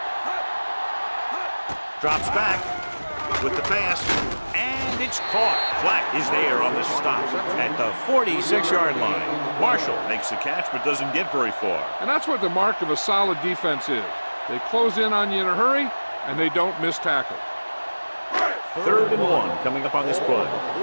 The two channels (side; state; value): both; inverted; correlation -1.00